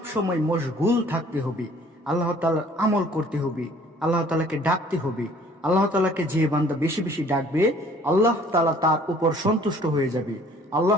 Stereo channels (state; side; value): normal; both; correlation 0.55